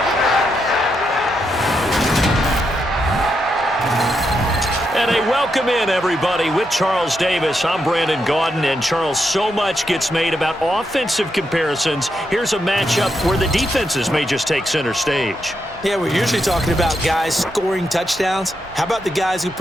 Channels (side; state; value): both; normal; correlation 0.82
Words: And a welcome in, everybody, with Charles Davis. I'm Brandon Gaudin, and Charles, so much gets made about offensive comparisons. Here's a matchup where the defenses may just take center stage. Yeah, we're usually talking about guys scoring touchdowns. How about the guys who